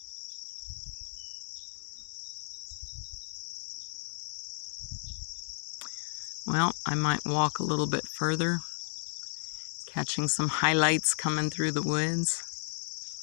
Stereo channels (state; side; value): silent; right; 56 dB below the other